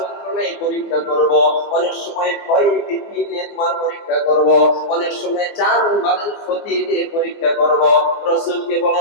পরীক্ষা করব, অনেক সময় ভয় ভীতি দিয়ে তোমার পরীক্ষা করব, অনেক সময় জান মালের ক্ষতি দিয়ে পরীক্ষা করব। রাসূলকে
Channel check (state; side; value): late; right; 24 ms